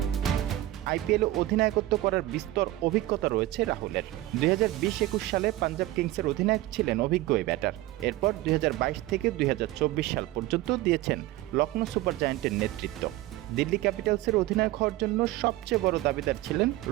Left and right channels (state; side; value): quieter; left; 16.5 dB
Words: আইপিএলে অধিনায়কত্ব করার বিস্তর অভিজ্ঞতা রয়েছে রাহুলের। 2020-21 সালে পাঞ্জাব কিংসের অধিনায়ক ছিলেন অভিজ্ঞ এই ব্যাটার। এরপর 2022 থেকে 2024 সাল পর্যন্ত দিয়েছেন লখনৌ সুপার জায়ান্টের নেতৃত্ব। দিল্লি ক্যাপিটালসের অধিনায়ক হওয়ার জন্য সবচেয়ে বড় দাবিদার ছিলেন